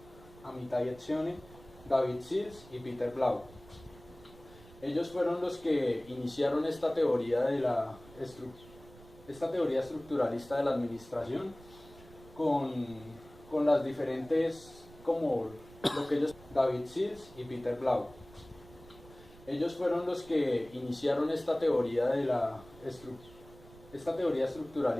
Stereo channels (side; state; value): right; noise; rumble, 21 dB below the sound